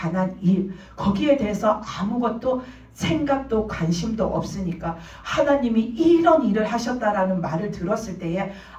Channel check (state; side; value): identical; both; correlation 1.00